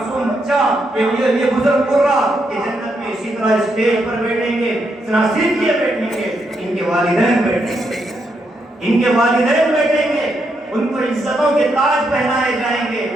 بچہ، یہ بزرگ قرہ کہ جنت میں اسی طرح اسٹیج پر بیٹھیں گے، نہ صرف یہ بیٹھیں گے، ان کے والدین بیٹھیں گے، ان کے والدین بیٹھیں گے، ان کو عزتوں کے تاج پہنائے جائیں گے،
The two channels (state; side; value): normal; both; correlation 0.80